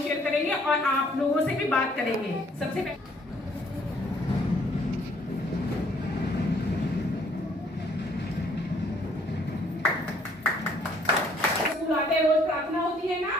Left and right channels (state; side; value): normal; both; correlation 0.62